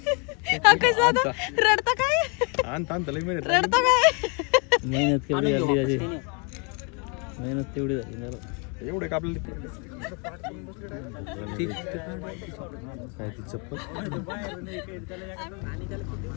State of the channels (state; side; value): quieter; right; 35.0 dB